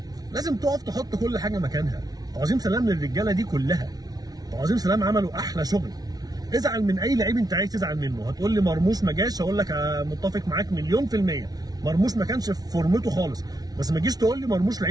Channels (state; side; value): late; left; 0.19 ms